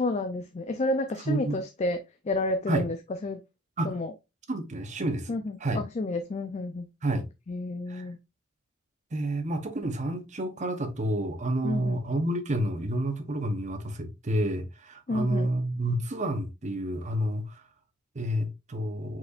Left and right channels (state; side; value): normal; both; correlation 0.62